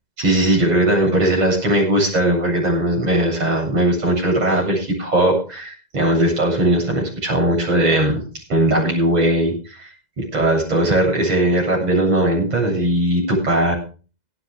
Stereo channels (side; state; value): left; late; 2.0 ms